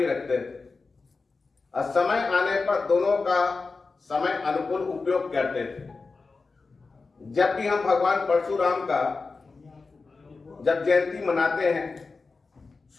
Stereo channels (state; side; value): quieter; right; 4.1 dB